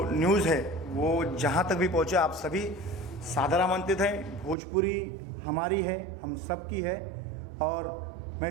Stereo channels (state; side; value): drops out; left; at 4.5 s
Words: न्यूज़ है वो जहाँ तक भी पहुँचे, आप सभी सादर आमंत्रित हैं। भोजपुरी हमारी है, हम सब की है, और मैं